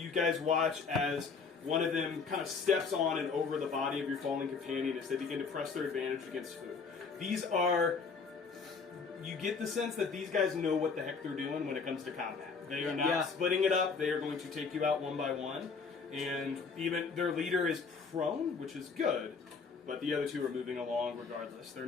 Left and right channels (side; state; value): right; quieter; 5.1 dB